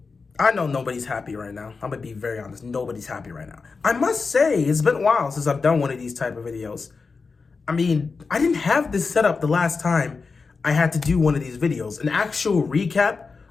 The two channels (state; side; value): quieter; right; 4.6 dB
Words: I know nobody's happy right now. I'm gonna be very honest. Nobody's happy right now. I must say, it's been a while since I've done one of these type of videos. I mean, I didn't have this set up the last time I had to do one of these videos. An actual recap